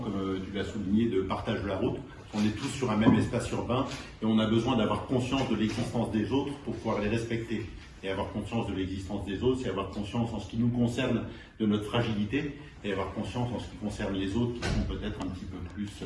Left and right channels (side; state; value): both; identical; correlation 1.00